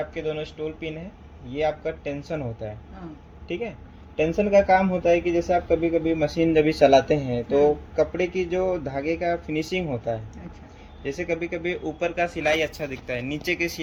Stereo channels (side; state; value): both; identical; correlation 1.00